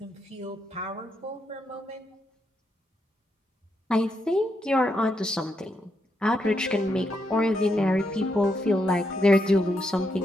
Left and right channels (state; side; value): normal; both; correlation 0.80